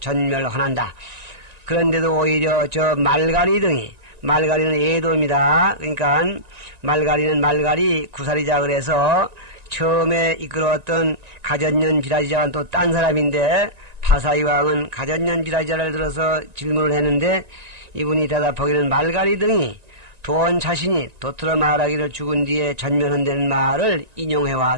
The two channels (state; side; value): late; left; 1.9 ms